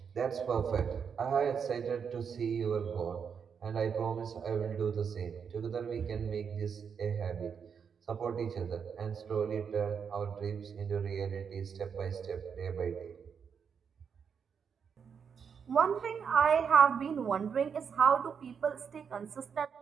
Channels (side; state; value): left; quieter; 6.7 dB